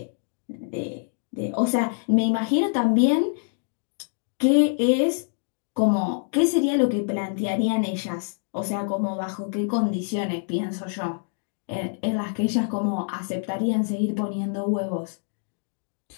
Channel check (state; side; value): silent; right; digital silence